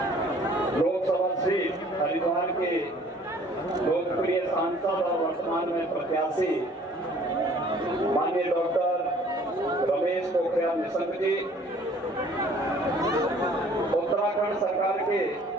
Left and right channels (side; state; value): both; normal; correlation 0.55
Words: लोकसभा सीट हरिद्वार के लोकप्रिय सांसद और वर्तमान में प्रत्याशी माननीय डॉक्टर रमेश पोखरियाल निशंक जी, उत्तराखंड सरकार के